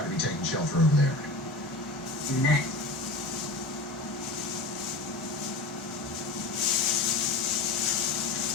to be taking shelter over there. Next.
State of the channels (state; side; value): quieter; right; 3.0 dB